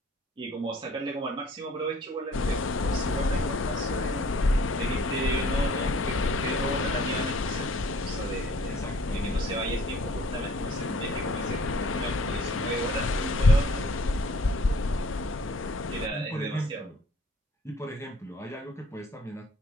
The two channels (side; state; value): both; normal; correlation 0.55